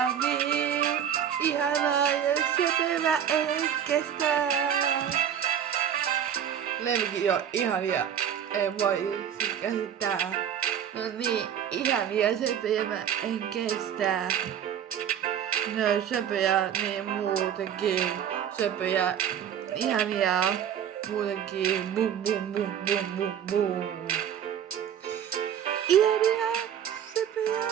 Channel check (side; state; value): left; quieter; 9.2 dB